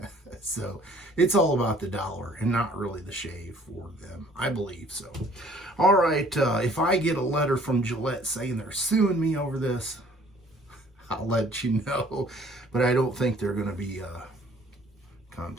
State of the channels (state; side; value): normal; both; correlation 0.56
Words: So it's all about the dollar and not really the shave for them, I believe. So all right, if I get a letter from Gillette saying they're suing me over this, I'll let you know, but I don't think they're going to be